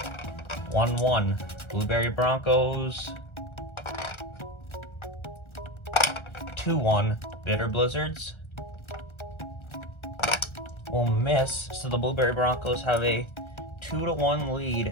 1-1. Blueberry Broncos, 2-1. Bitter Blizzards will miss, so the Blueberry Broncos have a 2-1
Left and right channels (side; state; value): right; late; 1.3 ms